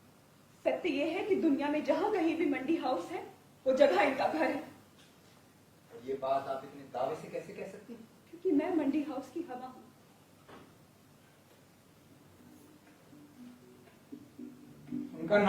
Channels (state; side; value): identical; both; correlation 1.00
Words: सत्य ये है कि दुनिया में जहां कहीं भी मंडी हाउस है वो जगह इनका घर है। और ये बात आप इतने दावे से कैसे कह सकती हैं? क्योंकि मैं मंडी हाउस की हवा हूं। उनका